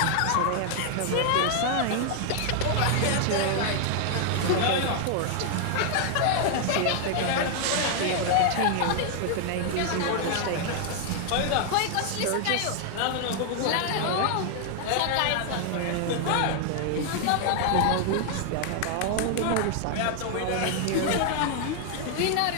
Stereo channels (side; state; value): both; different; correlation 0.00